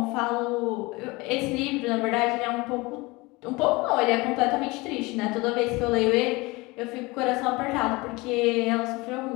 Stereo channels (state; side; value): quieter; right; 23.6 dB